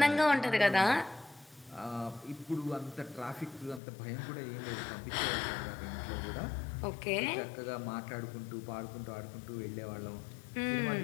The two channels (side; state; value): right; drops out; at 3.8 s